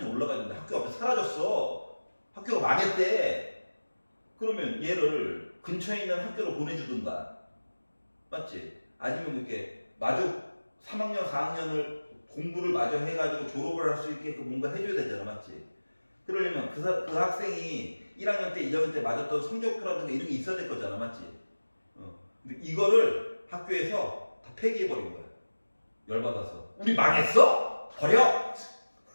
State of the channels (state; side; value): inverted; both; correlation -1.00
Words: 올라갔는데 학교 앞에 사라졌어. 학교가 망했대. 그러면 얘를 근처에 있는 학교로 보내주든가, 맞지? 아니면 이렇게 마저 3학년, 4학년을 공부를 마저 해가지고 졸업을 할 수 있게끔 뭔가 해줘야 되잖아, 맞지? 그러려면 그 학생이 1학년 때, 2학년 때 맞았던 성적표라든가 이런 게 있어야 될 거잖아, 맞지? 근데 이거를 학교에서 다 폐기해버린 거야. 열받아서. 우리 망했어? 버려!